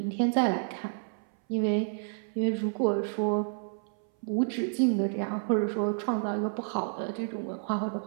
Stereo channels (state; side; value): silent; left; 58 dB below the other